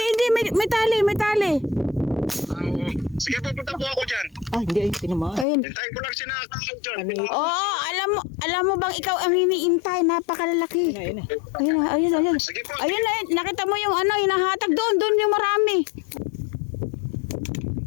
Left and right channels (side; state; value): right; drops out; at 5.5 s